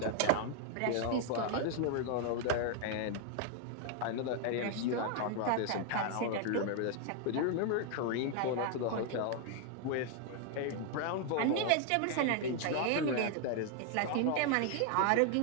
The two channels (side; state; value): both; different; correlation 0.00